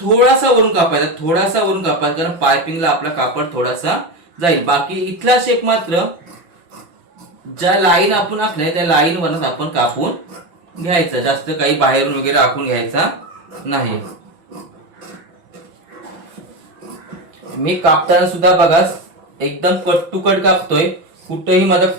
वरून कापायचा, थोडासा वरून कापायचा, कारण पायपिंगला आपला कापड थोडासा जाईल. बाकी इथला शेप मात्र ज्या लाईन आपण आखलाय त्या लाईन वरच आपण कापून घ्यायचा. जास्त काही बाहेरून वगैरे आखून घ्यायचा नाही. मी कापताना सुद्धा बघा एकदम कट टू कट कापतोय. कुठेही माझा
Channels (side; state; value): left; late; 5.9 ms